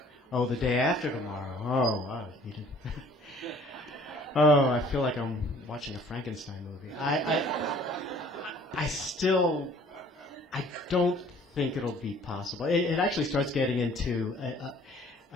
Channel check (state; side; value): normal; both; correlation 0.54